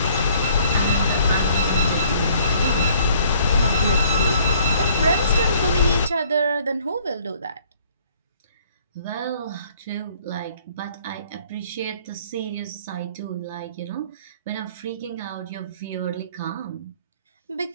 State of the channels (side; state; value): both; inverted; correlation -0.59